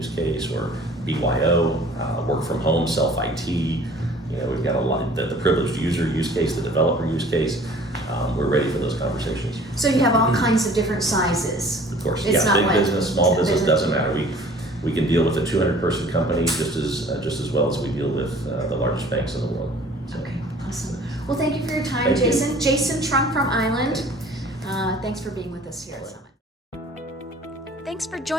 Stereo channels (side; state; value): both; normal; correlation 0.51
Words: case or BYO, work from home, self IT. We've got a lot the privileged user use case, the developer use case. We're ready for those conversations. So you have all kinds of different sizes. Of course, big business, small business, doesn't matter. We can deal with a 200-person company just as well as we deal with the largest banks in the world. So. Okay, awesome. Well, thank you for your time, Jason. Jason Trunk from Island. Thanks for being with us here at Summit. Thanks Thanks for